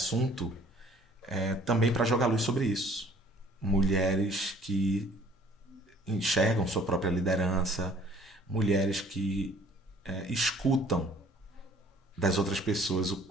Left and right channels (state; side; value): normal; both; correlation 0.56